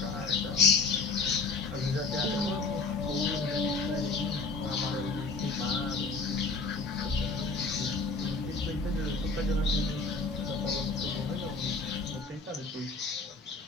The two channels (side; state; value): right; quieter; 4.0 dB